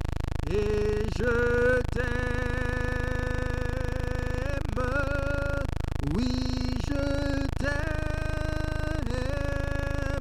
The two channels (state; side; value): identical; both; correlation 1.00